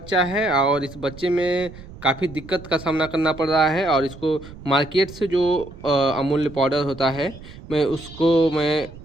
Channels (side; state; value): right; noise; rumble, 17 dB below the sound